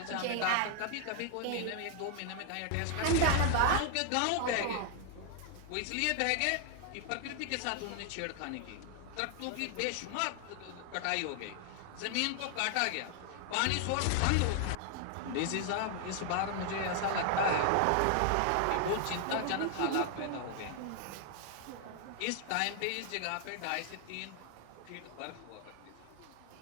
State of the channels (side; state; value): both; different; correlation 0.00